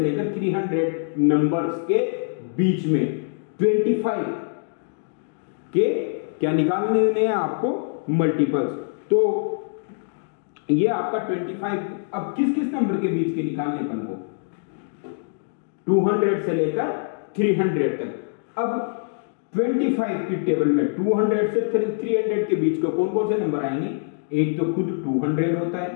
300 नंबर्स के बीच में 25 के क्या निकालने हैं आपको, मल्टीपल्स। तो ये आपका 25, अब किस किस नंबर के बीच के निकालने अपन को, 200 से लेकर 300 तक। अब 25 की टेबल में 200 से 300 के बीच को कौन कौन से नंबर आएंगे, एक तो खुद 200 होता है,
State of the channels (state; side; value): silent; right; digital silence